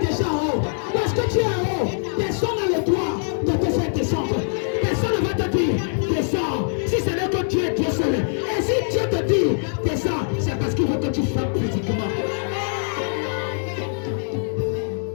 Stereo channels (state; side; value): silent; right; digital silence